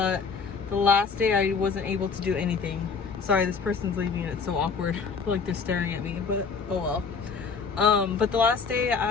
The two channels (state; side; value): quieter; right; 5.3 dB